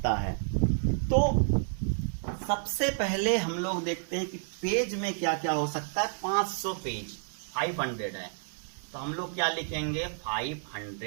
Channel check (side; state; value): left; silent; digital silence